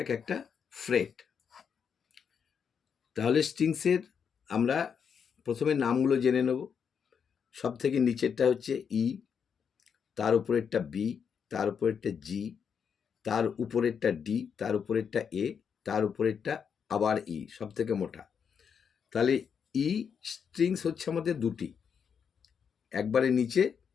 এক একটা ফ্রেট। তাহলে স্ট্রিংসের আমরা প্রথমে নামগুলো জেনে নেব। সব থেকে নিচেরটা হচ্ছে ই, তার উপরেরটা বি, তার উপরেরটা জি, তার উপরেরটা ডি, তার উপরেরটা এ, তার উপরেরটা আবার ই, সব থেকে মোটা। তাহলে ই স্ট্রিংস হচ্ছে আমাদের দুটি, একবারে নিচে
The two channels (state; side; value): quieter; right; 7.0 dB